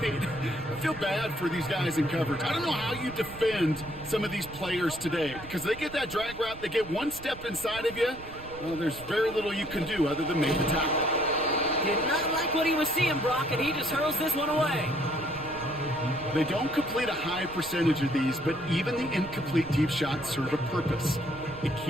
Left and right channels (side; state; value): right; noise; rumble, 16 dB below the sound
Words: I feel bad for these guys in coverage. I don't know how you defend some of these players today, because they get that drag route, they get one step inside of you. Well, there's very little you can do other than make the tackle. Did not like what he was seeing, Brock, and he just hurls this one away. They don't complete a high percentage of these, but even the incomplete deep shots serve a purpose. It